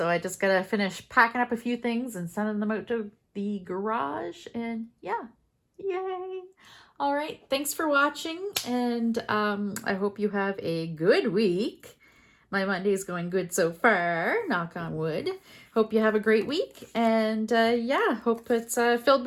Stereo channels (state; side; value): identical; both; correlation 1.00